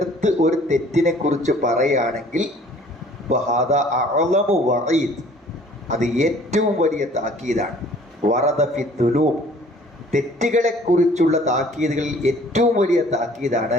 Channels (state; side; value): normal; both; correlation 0.53